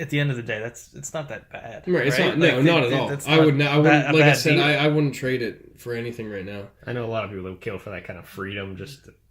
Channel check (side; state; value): both; identical; correlation 1.00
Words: the end of the day, it's not that bad. Right, it's right? not. No, not at all. I wouldn't. Like I said, I wouldn't trade it for anything right now. I know a lot of people that would kill for that kind of freedom. Just